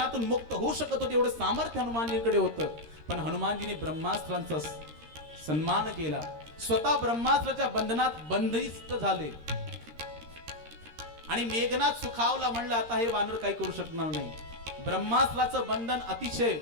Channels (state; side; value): late; left; 13 ms